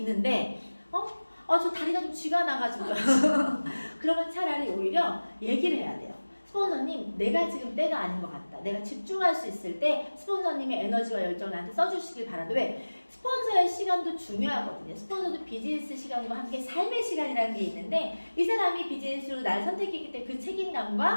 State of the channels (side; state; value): both; inverted; correlation -1.00